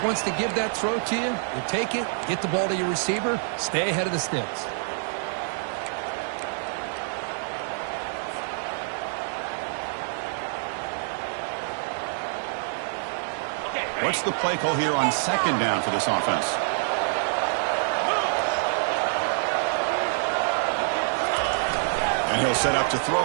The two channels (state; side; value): silent; left; digital silence